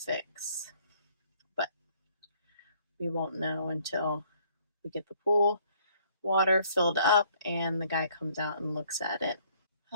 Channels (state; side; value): inverted; both; correlation -0.62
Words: But we won't know until we get the pool water filled up and the guy comes out and looks at it.